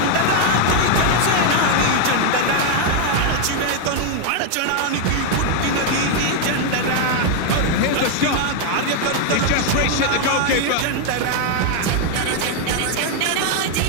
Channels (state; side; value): different; both; correlation 0.00